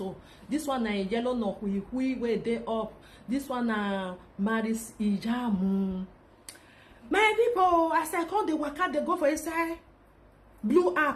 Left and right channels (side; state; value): both; identical; correlation 1.00